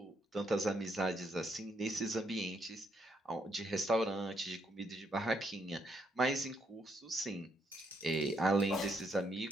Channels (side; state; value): both; normal; correlation 0.75